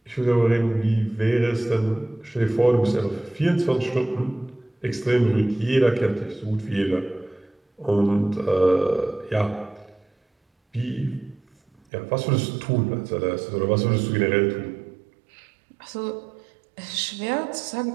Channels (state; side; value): drops out; left; at 11.8 s